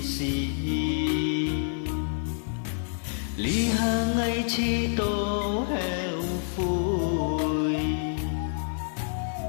xì lý hà ngay chi tô heo phùi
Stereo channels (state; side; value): silent; right; digital silence